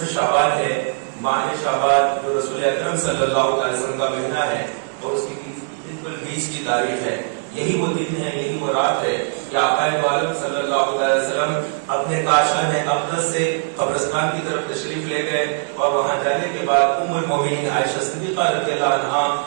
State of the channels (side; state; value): left; silent; digital silence